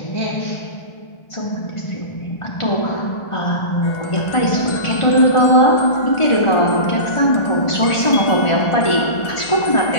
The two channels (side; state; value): right; late; 1.4 ms